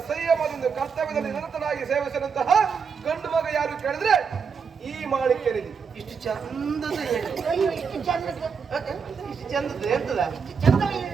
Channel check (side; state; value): left; quieter; 6.0 dB